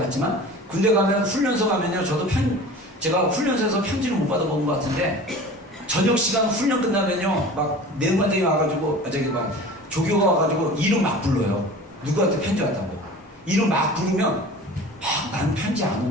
군대 가면 훈련소 가면요, 저도 제가 훈련소에서 편지를 못 받아먹은 것 같은데, 저녁 시간 훈련 끝나면요, 막 내무반장이 와가지고, 조교가 와가지고 이름 막 불러요. 누구한테 편지 왔다고. 이름 막 부르면, 난 편지 안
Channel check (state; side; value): normal; both; correlation 0.39